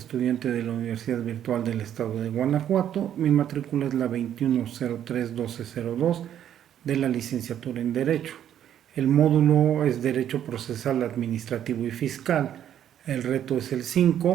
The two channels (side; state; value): left; quieter; 10.3 dB